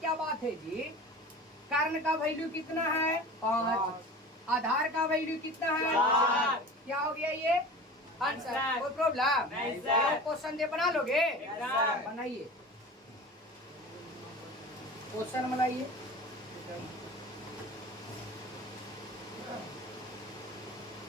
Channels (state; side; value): normal; both; correlation 0.37